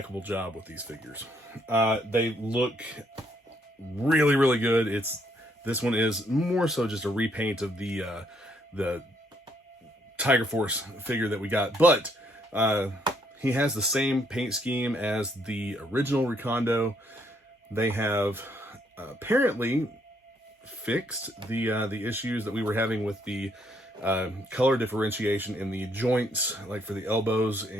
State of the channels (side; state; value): both; normal; correlation 0.71